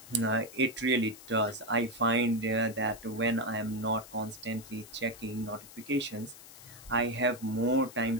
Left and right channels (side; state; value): left; noise; hiss, 18 dB below the sound